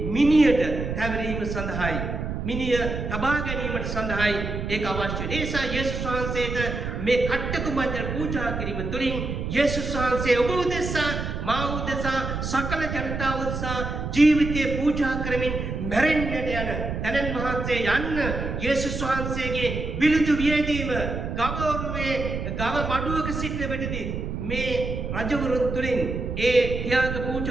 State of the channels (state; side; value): noise; right; rumble, 4 dB below the sound